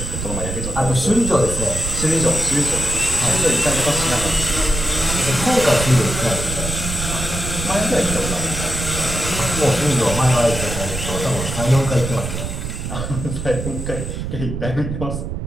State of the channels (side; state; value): right; noise; rumble, 5 dB below the sound